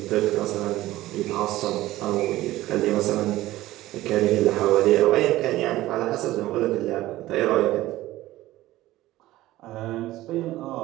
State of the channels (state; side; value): quieter; left; 16.3 dB